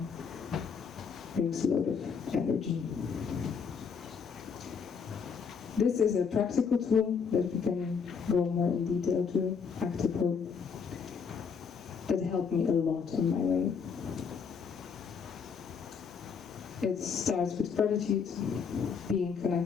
brings a lot of energy. This is a practical tool that we can go more in detail to, active hope, that helped me a lot on my way. It starts with gratitude, being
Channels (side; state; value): right; quieter; 6.1 dB